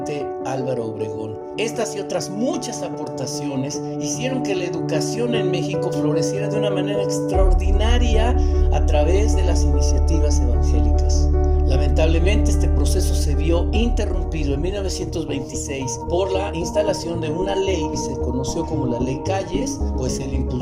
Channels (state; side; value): identical; both; correlation 1.00